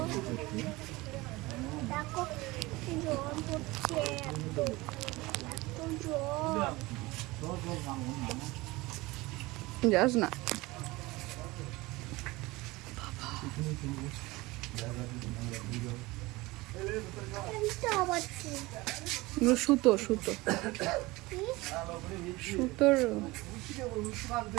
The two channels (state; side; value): quieter; left; 21.4 dB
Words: দেখো জল পড়ছে, এত এত জল। যাস না। সুতো সুতো সুতোর